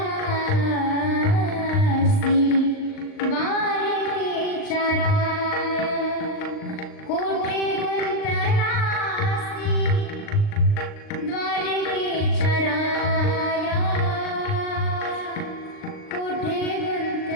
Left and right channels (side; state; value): right; late; 39 ms